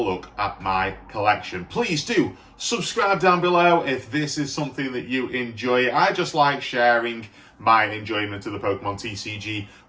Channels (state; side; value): identical; both; correlation 1.00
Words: at my collection. Please do subscribe down below if this is something that you enjoy. I just like sharing my enjoyment of the Pokemon TCG